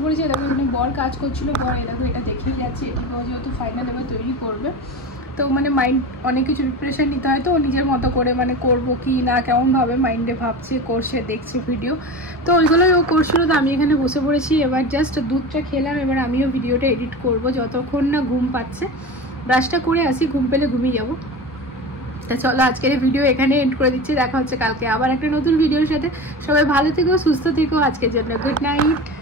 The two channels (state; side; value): normal; both; correlation 0.28